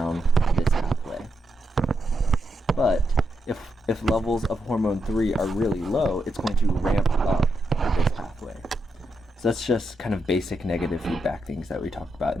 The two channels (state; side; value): normal; both; correlation 0.84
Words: this pathway. But if levels of hormone 3 are really low, it's going to ramp up this pathway. So that's just kind of basic negative feedback things that we talked about